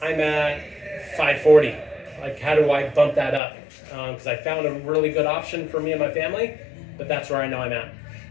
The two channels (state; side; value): drops out; right; at 3.4 s